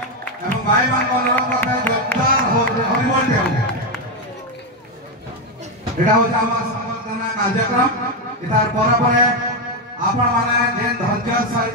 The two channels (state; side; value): normal; both; correlation 0.07